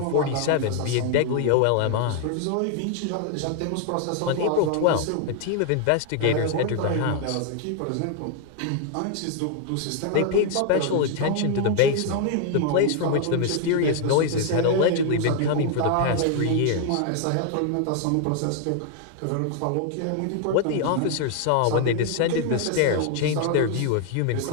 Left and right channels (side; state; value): both; different; correlation 0.00